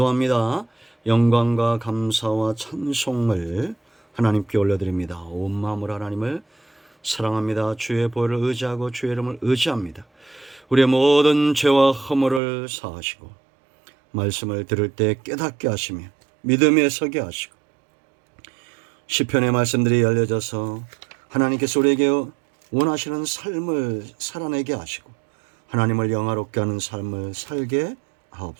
영광과 감사와 찬송을 하나님께 올려드립니다. 온 마음으로 하나님을 사랑합니다. 주의 보혈을 의지하고 주의 이름을 의지합니다. 우리의 모든 죄와 허물을 사하시고 말씀을 들을 때 깨닫게 하시며 믿음에 서게 하시고 시편의 말씀들이 열려져서 하나님께서 우리에게 원하시는 삶을 살아내게 하시고 하나님을 영화롭게 하는 삶을 살게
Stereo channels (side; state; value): left; drops out; at 12.4 s